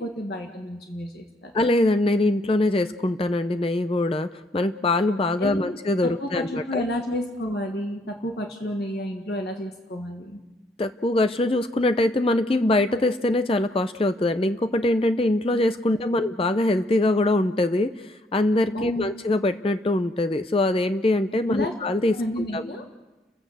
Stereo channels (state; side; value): normal; both; correlation 0.69